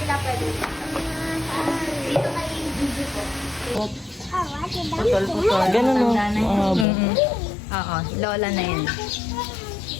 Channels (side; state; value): right; drops out; at 6.9 s